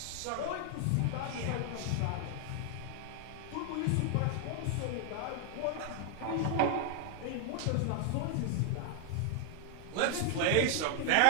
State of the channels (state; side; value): different; both; correlation 0.00